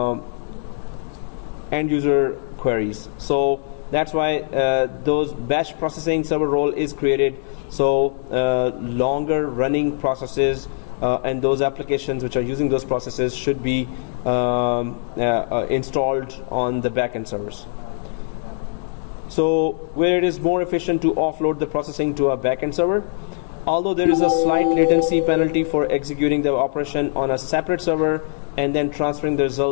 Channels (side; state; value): right; silent; digital silence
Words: end user queries. So that's why those batch processing server role is created. So longer running processes and those applications which are using those processes should be installed on the backend servers. So where it is more efficient to offload the processing to a backend server, although there is a slight latency penalty for executing the operation on a separate server and then transferring the